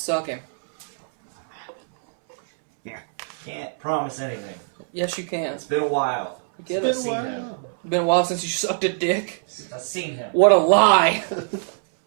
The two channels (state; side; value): silent; left; 63 dB below the other